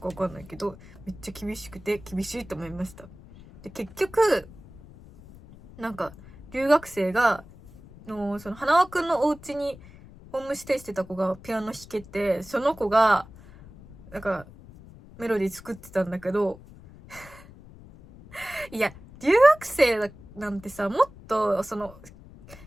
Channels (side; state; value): left; noise; rumble, 20 dB below the sound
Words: わかんないけど、めっちゃ厳しくて厳しいと思いました。で、結局、なんか、留学生が、花輪くんのお家にホームステイしてた子がピアノ弾けて、その子が、なんか、メロディー作ってたんだけど、いや、留学生なんてさ、もっと、